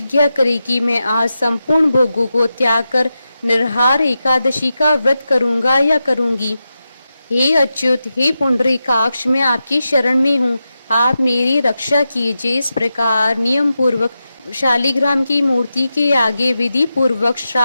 करें कि मैं आज संपूर्ण भोगों को त्याग कर निर्हार एकादशी का व्रत करूंगा या करूंगी। हे अच्युत, हे पुंडरीकाक्ष, मैं आपकी शरण में हूँ, आप मेरी रक्षा कीजिए। इस प्रकार नियम पूर्वक शालिग्राम की मूर्ति के आगे विधि पूर्वक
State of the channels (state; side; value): inverted; both; correlation -0.90